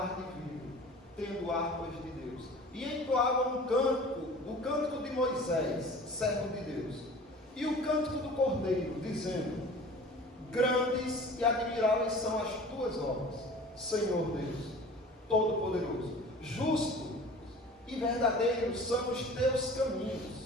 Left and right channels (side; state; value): both; normal; correlation 0.43